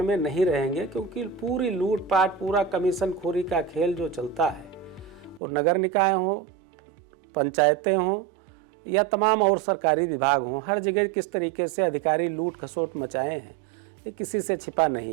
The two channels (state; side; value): drops out; left; at 5.4 s